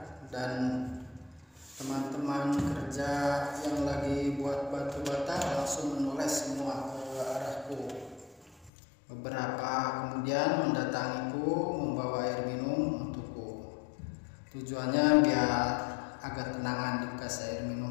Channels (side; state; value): right; drops out; at 8.7 s